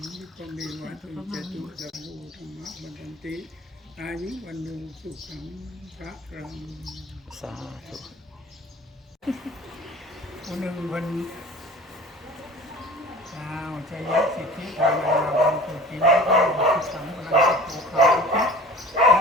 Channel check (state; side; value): normal; both; correlation 0.41